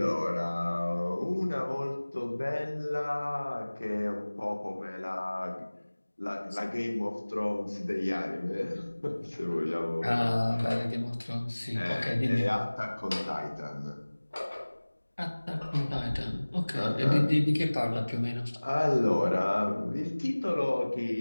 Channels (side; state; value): both; inverted; correlation -1.00